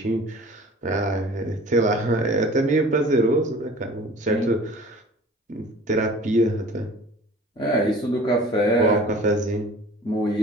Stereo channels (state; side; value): normal; both; correlation 0.45